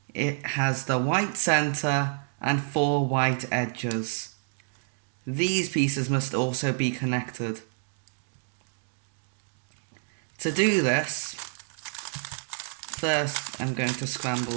It has the white centre and 4 white edges. These pieces must also be connected. To do this, first I'm going to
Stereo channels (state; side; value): silent; left; digital silence